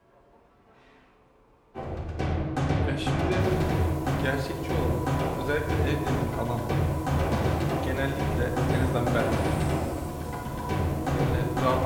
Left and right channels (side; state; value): both; identical; correlation 1.00